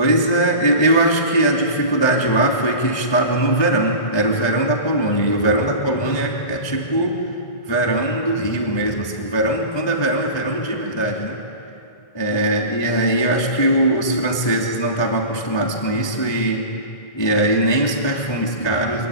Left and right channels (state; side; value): late; right; 1.2 ms